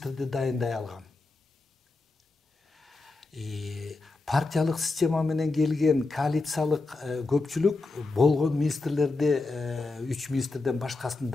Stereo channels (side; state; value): right; quieter; 3.5 dB